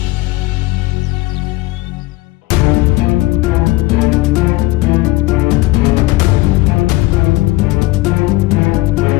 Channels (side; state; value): right; quieter; 19.6 dB